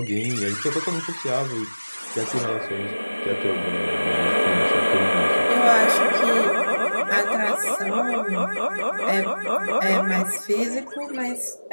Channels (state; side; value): inverted; both; correlation -1.00